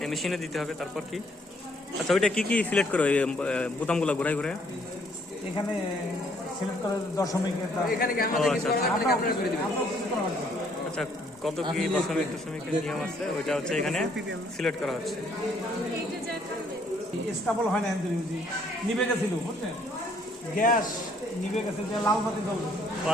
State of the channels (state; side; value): normal; both; correlation 0.65